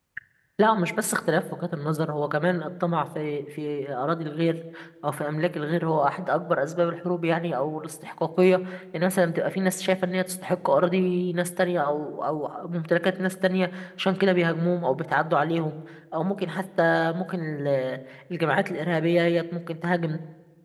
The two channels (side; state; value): both; identical; correlation 1.00